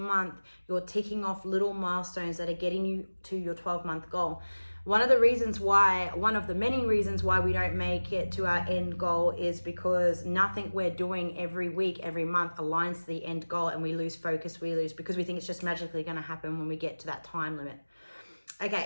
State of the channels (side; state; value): both; inverted; correlation -1.00